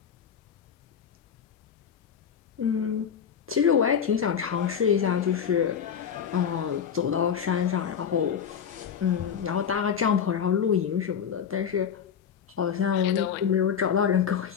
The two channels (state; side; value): quieter; right; 7.8 dB